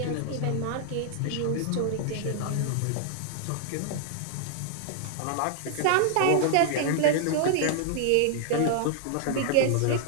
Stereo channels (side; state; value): both; different; correlation -0.01